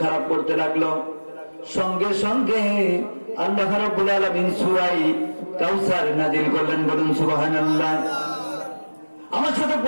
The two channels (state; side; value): inverted; both; correlation -1.00